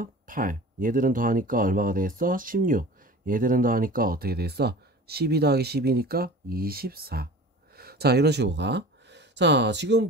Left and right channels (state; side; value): normal; both; correlation 0.39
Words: 8. 얘들은 더하니까 얼마가 되겠어? 16. 얘들은 더하니까 어떻게 되겠어? 12 더하기 12니까 24. 자, 이런 식으로 가. 자, 지금